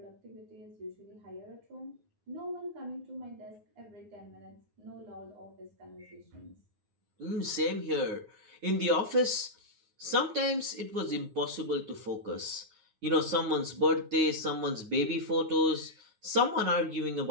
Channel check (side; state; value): left; late; 9.6 ms